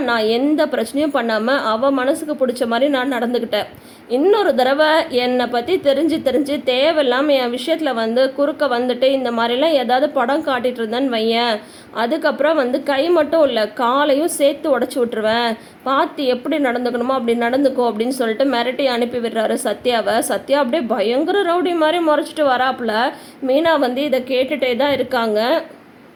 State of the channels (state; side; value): identical; both; correlation 1.00